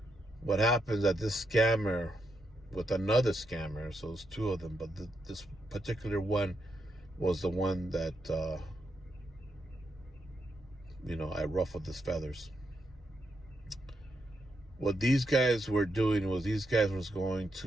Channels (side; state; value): both; normal; correlation 0.82